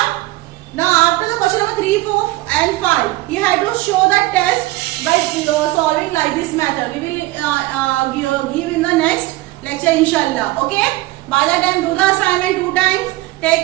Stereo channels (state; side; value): quieter; left; 19.1 dB